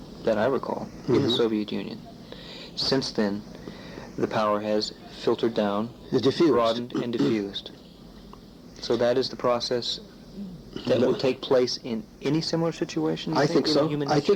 that I recall in the Soviet Union. Since then, the power has filtered down, broadened, and diffused. So that is the process that will take place in any similar situation. I think so. I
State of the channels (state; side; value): identical; both; correlation 1.00